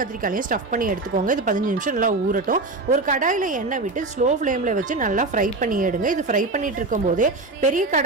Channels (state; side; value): quieter; left; 3.3 dB